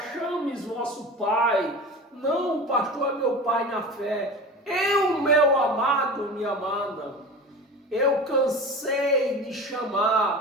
chames vosso pai. Não, o pastor é meu pai na fé. Eu, meu amado, minha amada, eu cansei de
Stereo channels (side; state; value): both; normal; correlation 0.33